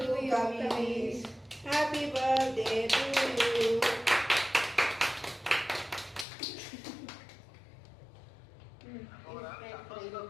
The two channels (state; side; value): drops out; right; at 6.2 s